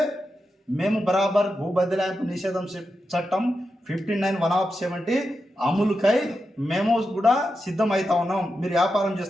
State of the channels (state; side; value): normal; both; correlation 0.88